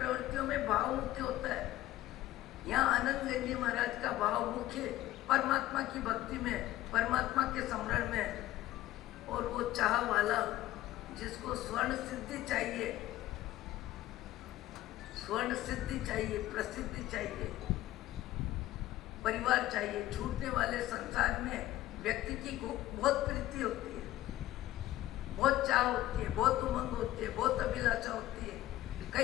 में भाव मुख्य होता है। यहाँ आनंदगंज जी महाराज का भाव मुख्य परमात्मा की भक्ति में, परमात्मा के स्मरण में, और वो चाह वाला जिसको स्वर्ण सिद्धि चाहिए, स्वर्ण सिद्धि चाहिए, प्रसिद्धि चाहिए, परिवार चाहिए, छूटने वाले संसार में व्यक्ति की बहुत प्रीति होती है, बहुत चाह होती है, बहुत उमंग होती है, बहुत अभिलाषा होती है।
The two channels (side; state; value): right; quieter; 15.1 dB